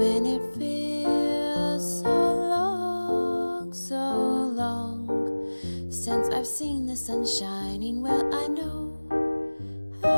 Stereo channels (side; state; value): both; inverted; correlation -1.00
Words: it feels so long since I've seen the sun shining, well, I know